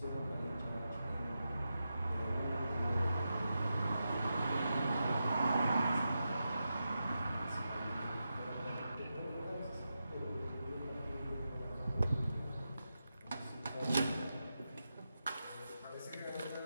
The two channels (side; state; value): both; inverted; correlation -0.89